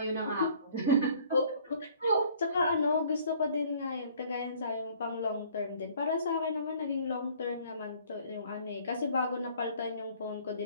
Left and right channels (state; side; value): inverted; both; correlation -0.56